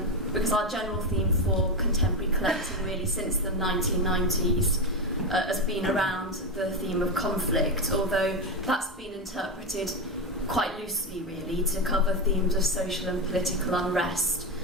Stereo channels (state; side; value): normal; both; correlation 0.13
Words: because our general theme for contemporary collecting really since the 1990s has been around the theme of conflict, although that's been interpreted quite loosely really to cover themes of social and political unrest,